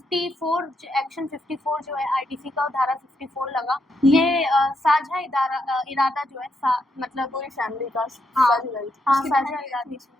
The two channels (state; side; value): normal; both; correlation 0.79